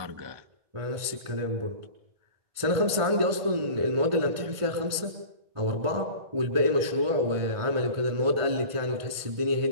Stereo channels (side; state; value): left; late; 2.2 ms